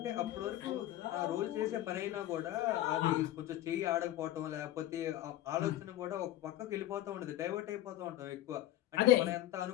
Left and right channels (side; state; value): right; quieter; 13.9 dB